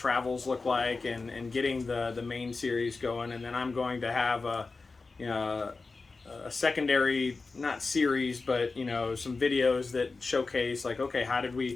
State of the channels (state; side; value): quieter; right; 3.9 dB